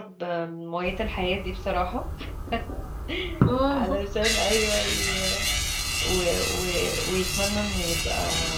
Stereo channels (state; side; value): identical; both; correlation 1.00